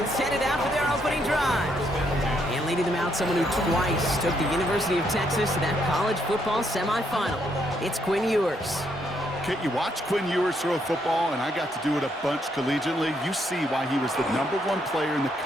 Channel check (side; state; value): both; normal; correlation 0.74